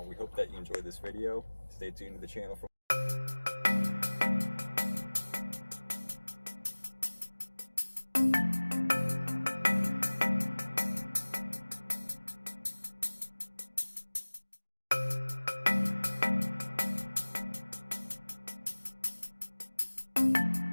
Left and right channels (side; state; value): both; inverted; correlation -1.00